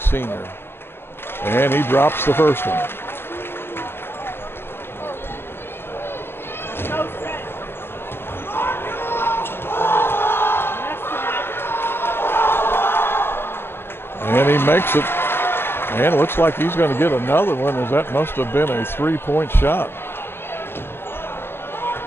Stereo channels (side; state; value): right; late; 0.11 ms